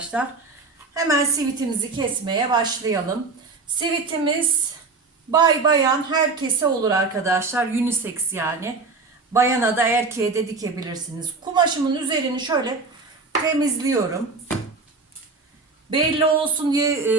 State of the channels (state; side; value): quieter; left; 4.0 dB